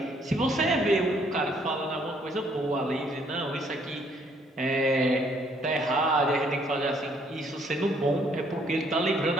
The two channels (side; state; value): both; normal; correlation 0.66